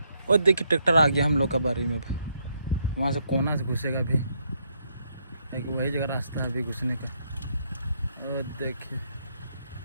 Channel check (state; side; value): inverted; both; correlation -0.75